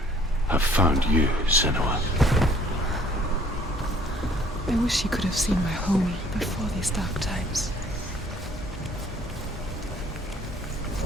have found you, Senua. I wish you could have seen my home before these dark times.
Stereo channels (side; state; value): both; normal; correlation 0.58